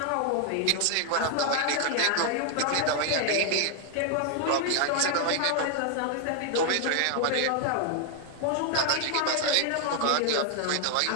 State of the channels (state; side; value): different; both; correlation 0.00